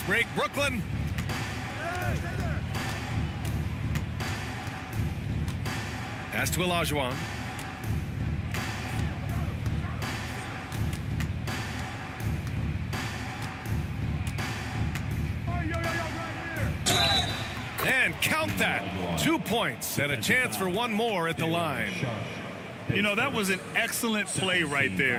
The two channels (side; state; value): both; identical; correlation 1.00